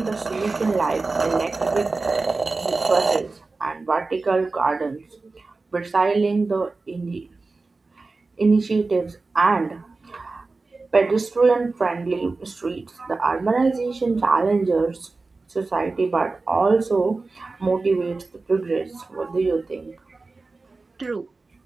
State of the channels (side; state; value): left; quieter; 3.7 dB